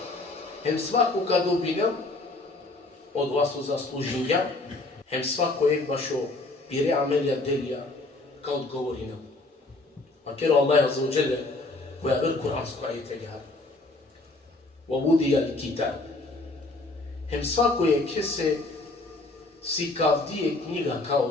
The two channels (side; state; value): right; quieter; 3.0 dB